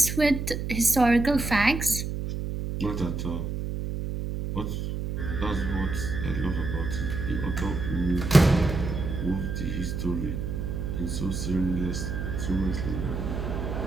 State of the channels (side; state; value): right; noise; hum, 3 dB below the sound